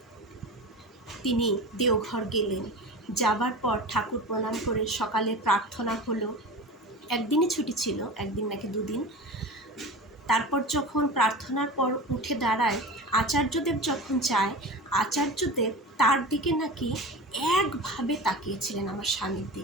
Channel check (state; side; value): normal; both; correlation 0.31